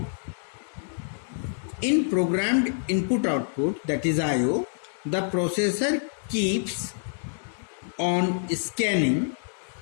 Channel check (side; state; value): right; silent; 60 dB below the other